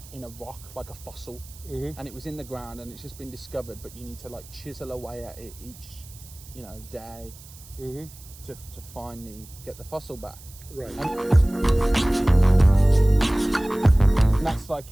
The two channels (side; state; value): right; noise; hiss, 20 dB below the sound